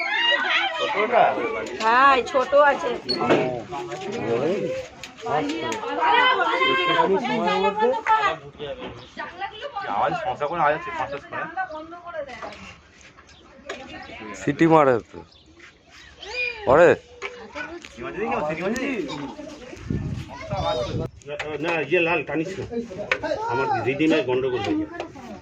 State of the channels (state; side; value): identical; both; correlation 1.00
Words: হ্যাঁ ছোট আছে। সিটি মারে তো পরে না ইয়ে লাল টানিস না, আমার রিডিমে গন্ডগোল হয়ে যাবে।